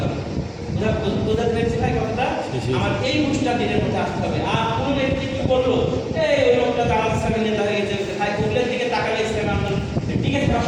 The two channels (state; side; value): identical; both; correlation 1.00